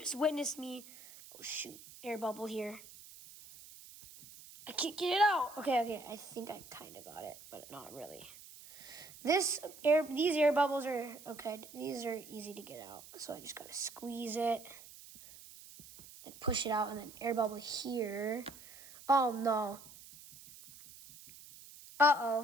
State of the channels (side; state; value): right; noise; hiss, 18 dB below the sound